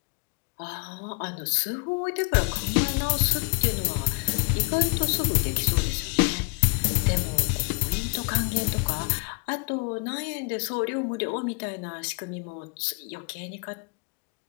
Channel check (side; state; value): right; quieter; 35.7 dB